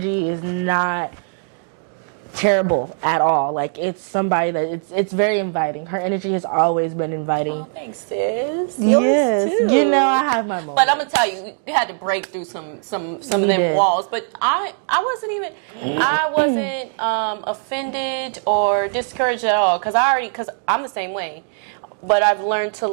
is not terrible at all. Like, it's somebody that it's very inviting. Her energy has always been inviting. Oh, thanks, sis. Yes, too. you know I have my moments. But I'm gonna tell you, we had to break through some of them walls. But I wasn't offended or discouraged at all because I'm the same way. But I've learned to,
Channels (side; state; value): left; silent; digital silence